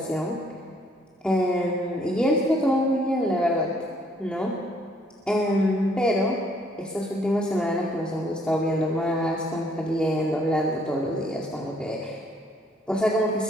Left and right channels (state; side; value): normal; both; correlation 0.65